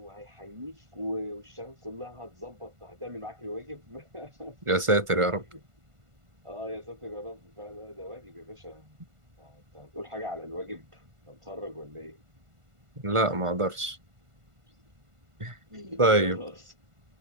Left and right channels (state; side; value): late; left; 1.5 ms